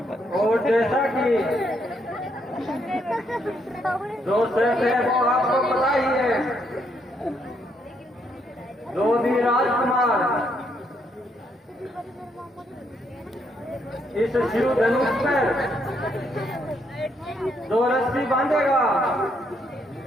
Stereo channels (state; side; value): normal; both; correlation 0.74